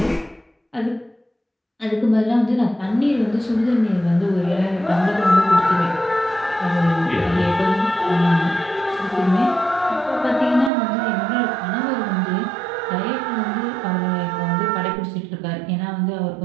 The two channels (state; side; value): drops out; left; at 10.7 s